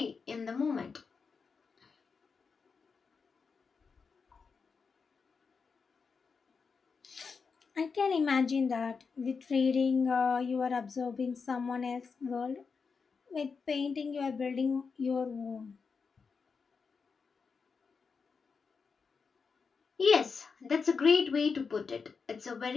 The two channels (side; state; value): right; quieter; 5.2 dB